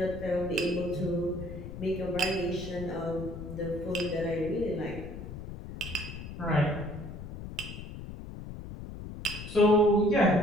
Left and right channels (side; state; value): left; noise; rumble, 10 dB below the sound